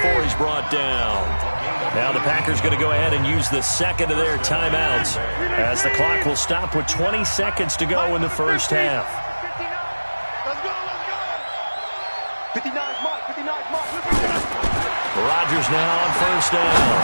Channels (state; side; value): inverted; both; correlation -1.00